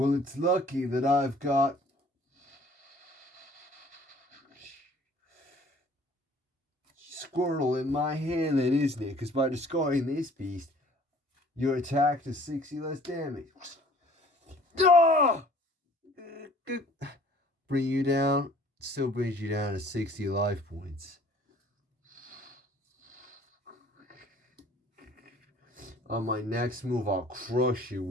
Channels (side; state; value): both; normal; correlation 0.54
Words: it's lucky that I've got Squirtle in my hand then, isn't it? Because by discarding this beast, your attack does 60 less damage. Bring you down. Still brings you down to 60 life points. On my next move, I'll crush you